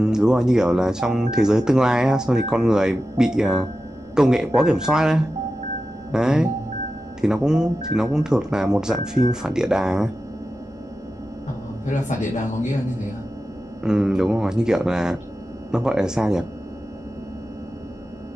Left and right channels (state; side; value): normal; both; correlation 0.92